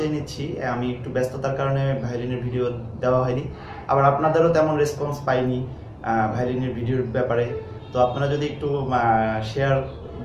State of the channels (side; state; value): both; identical; correlation 1.00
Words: নিচ্ছি, আমি একটু ব্যস্ততার কারণে ভায়োলিনের ভিডিও দেওয়া হয়নি। আবার আপনাদেরও তেমন রেসপন্স পাইনি ভায়োলিনের ভিডিওর ব্যাপারে। তো আপনারা যদি একটু শেয়ার